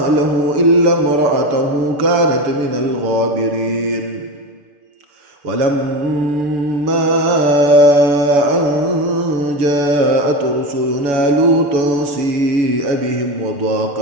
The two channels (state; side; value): late; left; 6.7 ms